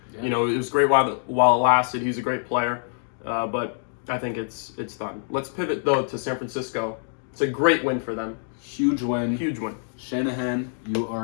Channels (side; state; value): right; silent; digital silence